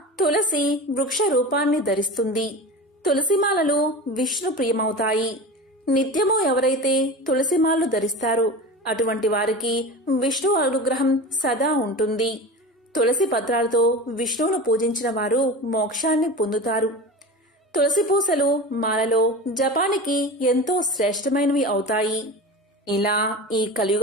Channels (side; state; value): both; normal; correlation 0.30